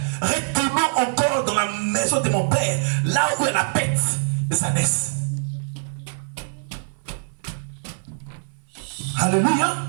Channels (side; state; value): left; silent; digital silence